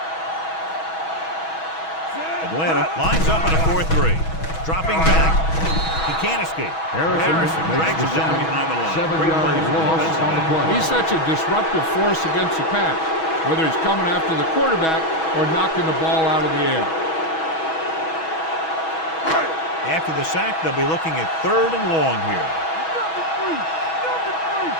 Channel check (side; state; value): right; late; 6.2 ms